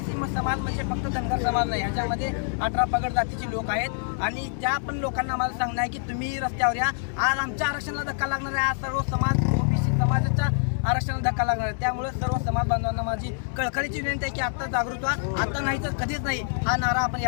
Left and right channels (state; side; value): silent; right; digital silence